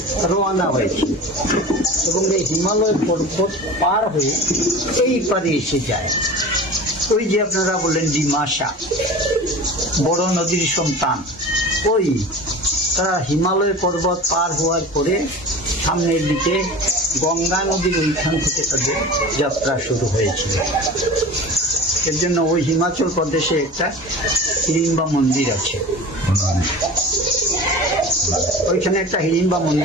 রওনা হয়েছিল এবং এই হিমালয় পর্বত পার হয়ে এই পারে এসে যায়। ওই যে আপনারা বললেন ডিমাসা, বড় নদীর সন্তান, ওই তারা হিমালয় পর্বত পার হওয়ার পরে সামনের দিকে গঙ্গা নদীর ওইখান থেকে তাদের যাত্রা শুরু হয়েছিল। এর জন্য ওই হিমাচল প্রদেশে একটা হিড়িম্বা মন্দির আছে, ওইখানে একটা হিড়িম্বা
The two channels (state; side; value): normal; both; correlation 0.36